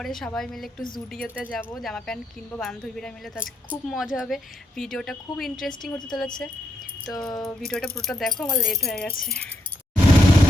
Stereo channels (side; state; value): both; normal; correlation 0.79